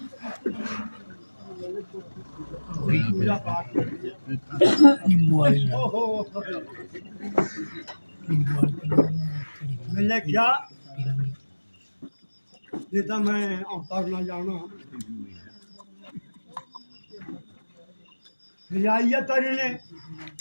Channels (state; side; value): inverted; both; correlation -1.00